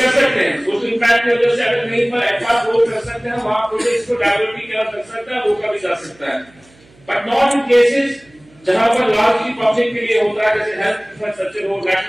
सकते हैं, सोशल इम्पैक्ट की वजह से अगर कहीं पर एडवांस रोड कर सकते हैं, वहां प्रोजेक्ट्स को डेवलप किया जा सकता है, रोका भी जा सकता है, बट नॉट इन केसेस जहां पर लार्जली पब्लिक के लिए होता है, जैसे हेल्थ इंफ्रास्ट्रक्चर हो,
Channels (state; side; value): noise; right; hum, 29 dB below the sound